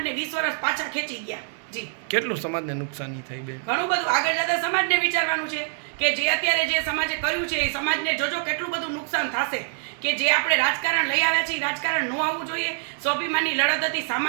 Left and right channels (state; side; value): silent; left; digital silence